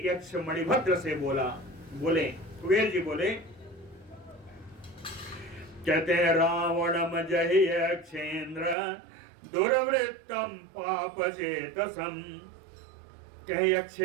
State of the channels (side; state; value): left; drops out; at 8.8 s